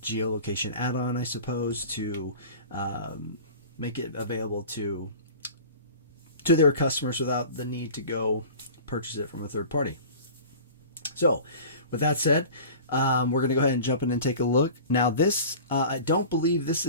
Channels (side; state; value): both; inverted; correlation -0.39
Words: geolocation add-on, I suppose, to make it available to their customers without the need to go purchase it from a third party. So, with that said, we're going to go ahead and jump in and take a look. Now this, I don't believe this